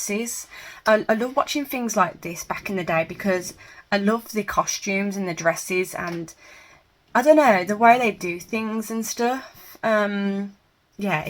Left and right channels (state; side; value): identical; both; correlation 1.00